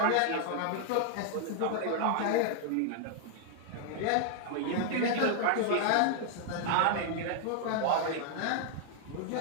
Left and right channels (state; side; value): different; both; correlation 0.00